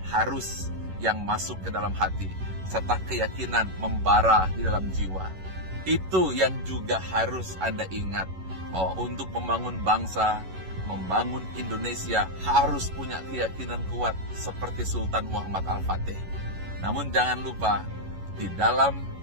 harus yang masuk ke dalam hati, serta keyakinan membara di dalam jiwa. Itu yang juga harus Anda ingat, bahwa untuk membangun bangsa, membangun Indonesia harus punya keyakinan kuat seperti Sultan Muhammad Al-Fatih. Namun jangan lupa, di dalam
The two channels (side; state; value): left; late; 11 ms